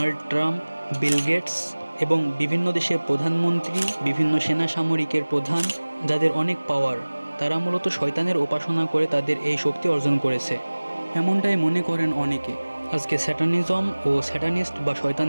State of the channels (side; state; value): both; inverted; correlation -1.00